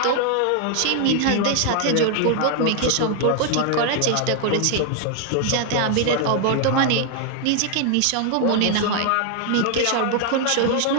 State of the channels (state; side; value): different; both; correlation 0.00